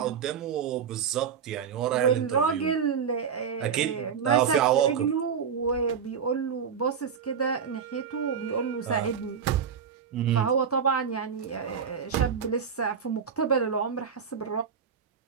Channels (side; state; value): left; quieter; 7.0 dB